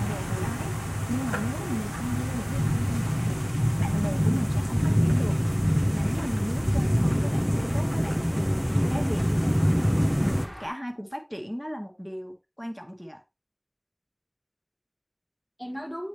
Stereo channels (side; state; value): both; identical; correlation 1.00